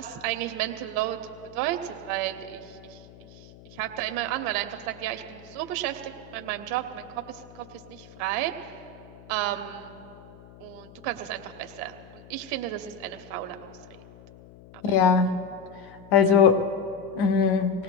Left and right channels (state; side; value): noise; left; hum, 20 dB below the sound